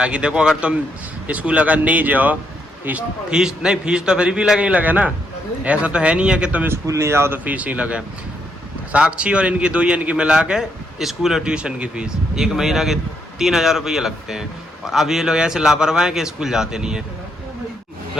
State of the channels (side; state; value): both; normal; correlation 0.76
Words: देखो अगर तुम स्कूल अगर नहीं जाओ फीस नहीं, फीस तो फिर भी लगे ना, ऐसा तो है नहीं है कि तुम स्कूल नहीं जाओ तो फीस ही लगे। साक्षी और इनकी 2 की मिला के स्कूल और ट्यूशन की फीस 1 महीना के 3000 रुपये लगते हैं। और अब ये लोग ऐसे लापरवाह हैं कि स्कूल जाते नहीं है।